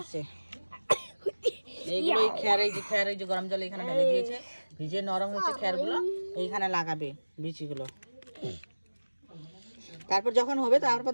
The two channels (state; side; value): inverted; both; correlation -1.00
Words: আছে, এইগুলো খেয়ার, এই যে খেয়ার, এই যে গরম জল এখানে ঢেলে দিয়েছে, ভিজে নরম হচ্ছে খেয়ারগুলো, এইখানে লাগাবে বিচিগুলো। তারপর যখন হবে তারপর